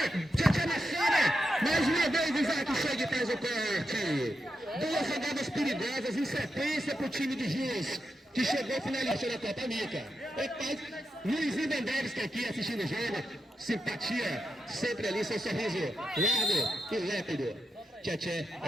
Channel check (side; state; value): both; normal; correlation 0.87